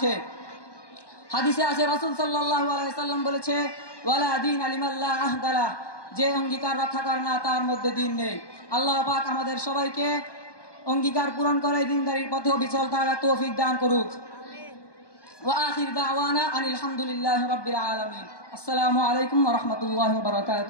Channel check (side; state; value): right; late; 1.2 ms